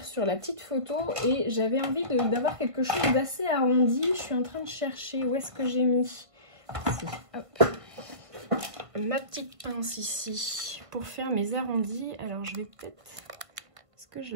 sur la petite photo et j'avais envie d'avoir quelque chose d'assez arrondi. Je suis en train de chercher où est-ce que j'ai mis. Ici, hop. Ma petite pince ici pour faire mes arrondis. Alors je vais peut-être... Est-ce que je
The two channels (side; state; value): left; late; 1.5 ms